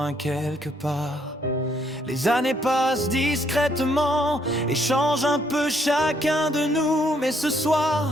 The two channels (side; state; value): both; normal; correlation 0.70